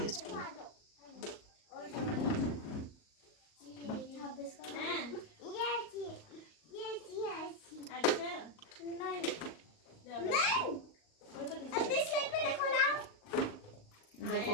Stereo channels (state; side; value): late; right; 38 ms